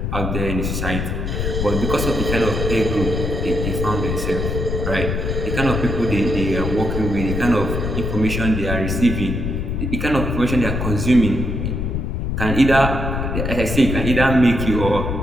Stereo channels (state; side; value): noise; left; rumble, 2 dB below the sound